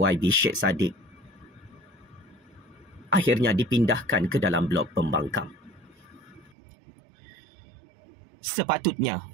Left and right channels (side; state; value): left; drops out; at 6.6 s